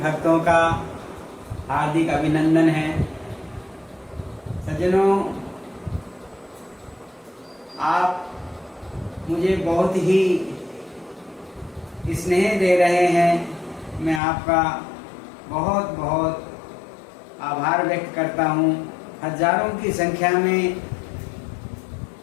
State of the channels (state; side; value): drops out; right; at 14.2 s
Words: का हार्दिक अभिनंदन है। सज्जनों, आप मुझे बहुत ही स्नेह दे रहे हैं। मैं आपका बहुत बहुत आभार व्यक्त करता हूँ। हजारों की संख्या में